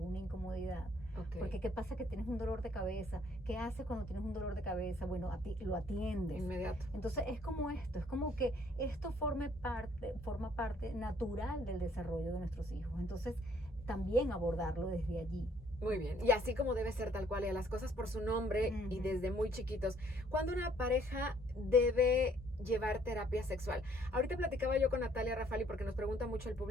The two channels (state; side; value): normal; both; correlation 0.63